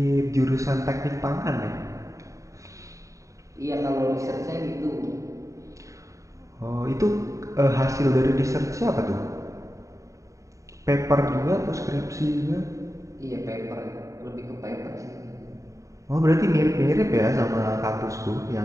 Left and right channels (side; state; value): left; late; 0.16 ms